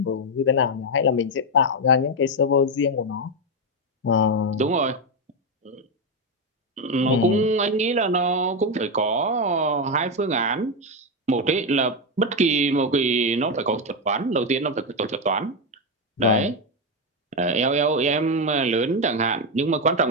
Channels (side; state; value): both; normal; correlation 0.07